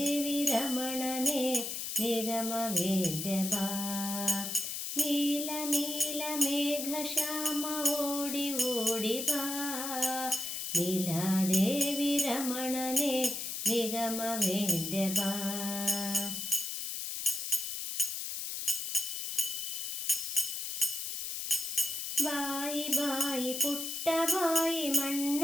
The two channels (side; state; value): left; noise; hiss, 4 dB below the sound